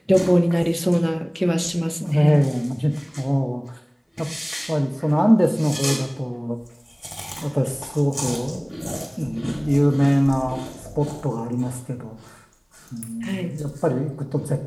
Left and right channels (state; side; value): identical; both; correlation 1.00